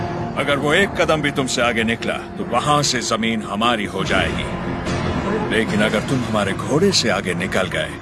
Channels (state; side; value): identical; both; correlation 1.00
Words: अगर वो एक कदम भी तुमसे आगे निकला तो वहां से जमीन हमारी हो जाएगी, लेकिन अगर तुम हमारे घोड़े से आगे निकल गए